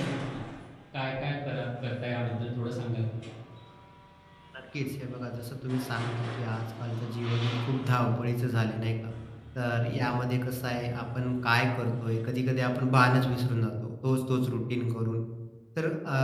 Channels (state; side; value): identical; both; correlation 1.00